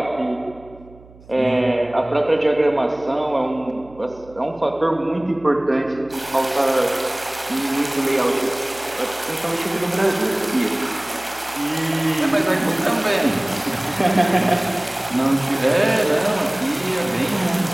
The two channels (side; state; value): right; noise; hum, 23 dB below the sound